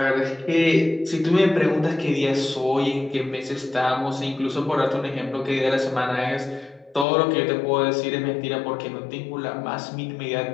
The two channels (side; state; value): right; drops out; at 7.1 s